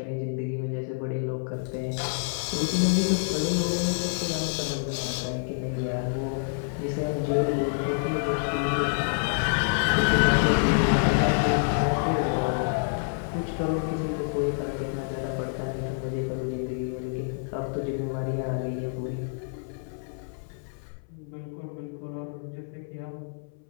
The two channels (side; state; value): right; silent; 59 dB below the other